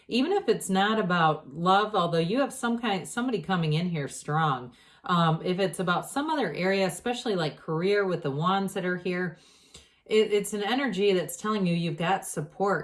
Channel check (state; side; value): identical; both; correlation 1.00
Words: even if it's not about love, although you have somebody coming in here strong. If it's about some other area, especially like career with the wands that are here, it's an energy that's telling you you've got